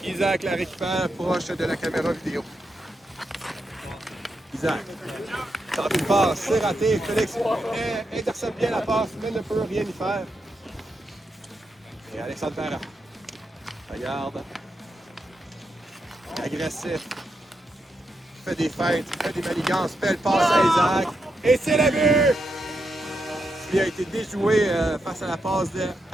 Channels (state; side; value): normal; both; correlation 0.84